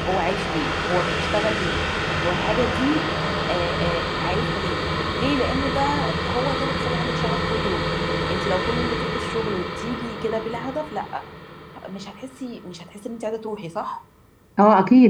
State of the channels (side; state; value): both; identical; correlation 1.00